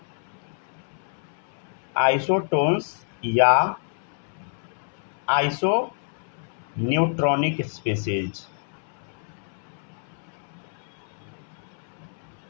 आइसोटोन्स या आइसो न्यूट्रॉनिक स्पीसीज,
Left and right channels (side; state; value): right; silent; 60 dB below the other